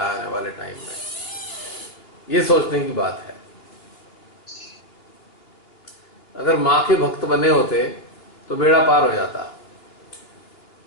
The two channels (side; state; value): right; late; 2.9 ms